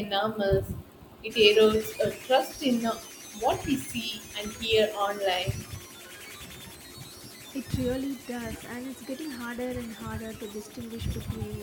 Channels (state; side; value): identical; both; correlation 1.00